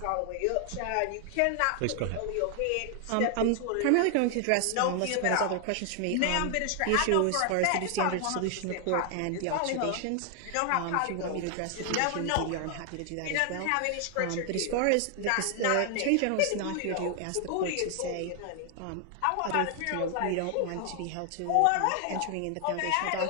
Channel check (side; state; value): both; different; correlation 0.00